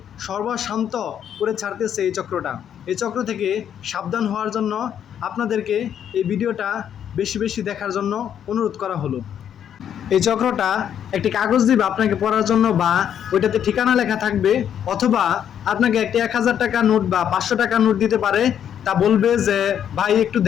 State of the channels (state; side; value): quieter; right; 9.2 dB